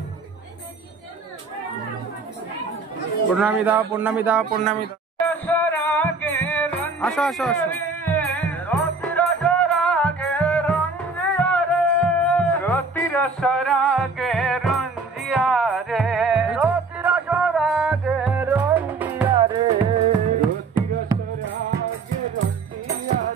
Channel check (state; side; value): quieter; left; 4.0 dB